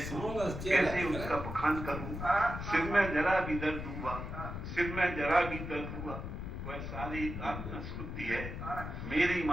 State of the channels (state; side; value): noise; left; rumble, 6 dB below the sound